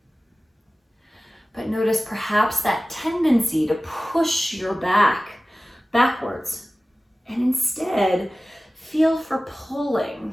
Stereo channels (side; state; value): both; normal; correlation 0.97